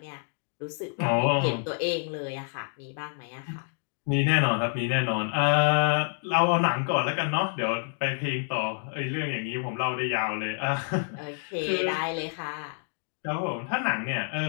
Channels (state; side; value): silent; right; 56 dB below the other